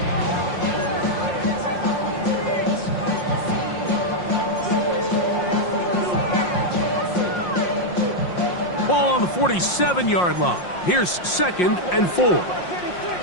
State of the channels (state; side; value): late; right; 5.6 ms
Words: Ball on the 47-yard line. Here's 2nd and 4.